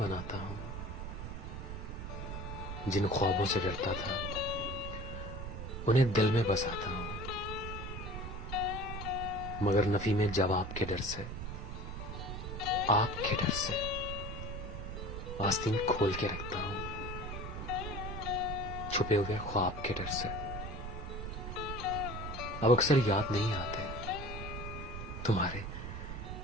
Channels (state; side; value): noise; right; rumble, 7 dB below the sound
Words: हूं। जिन ख्वाबों से डरता था उन्हें दिल में बसाता हूं, मगर नफी में जवाब के डर से, आपके डर से आस्तीन खोल के रखता हूं, छुपे हुए ख्वाब के डर से। अब अक्सर याद नहीं आते तुम्हारे